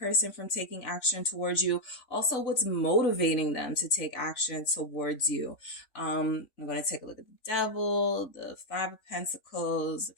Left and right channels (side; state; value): right; late; 3.5 ms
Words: from taking action towards you. Also, what's motivating them to take action towards you. I'm going to take a look at the Devil, the Five of Pentacles, the